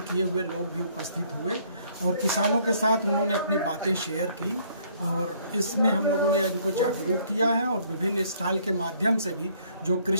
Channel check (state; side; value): inverted; both; correlation -0.63